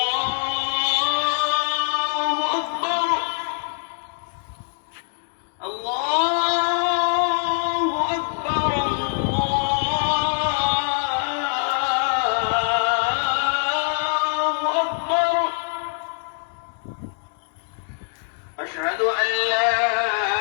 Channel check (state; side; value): silent; right; digital silence